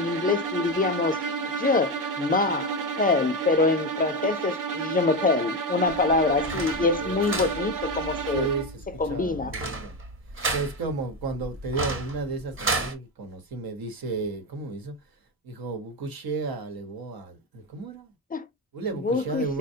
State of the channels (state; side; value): normal; both; correlation 0.14